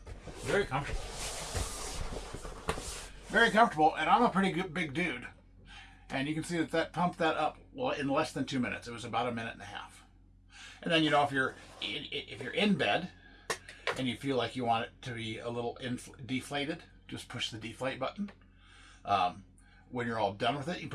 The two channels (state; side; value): identical; both; correlation 1.00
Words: very comfortable. Very comfortable, and I'm a pretty good big dude. And you can see that pumped that up in less than 2 minutes. It was about 1.5 minutes. And then, you know, if you're in bed and you feel like you want it to be a little deflated, just push the deflate button. When you're all done with it, you